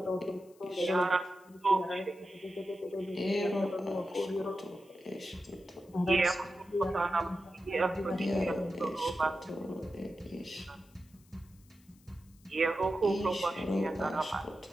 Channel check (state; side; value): noise; left; hiss, 30 dB below the sound